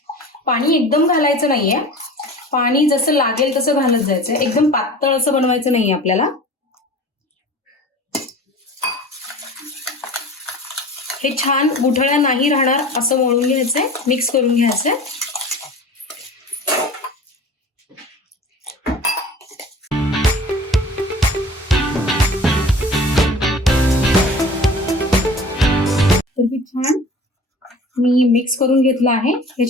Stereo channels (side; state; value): both; normal; correlation 0.40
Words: पाणी एकदम घालायचं नाहीये, पाणी जसं लागेल तसं घालत जायचं, एकदम पातळ असं बनवायचं नाहीये आपल्याला। हे छान गुठळ्या नाही राहणार असं मळून घ्यायचंय, मिक्स करून घ्यायचंय। तर मी छान मिक्स करून घेतलं आहे।